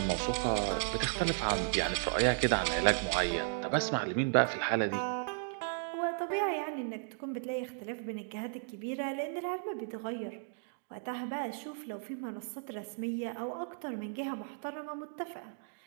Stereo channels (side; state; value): left; silent; digital silence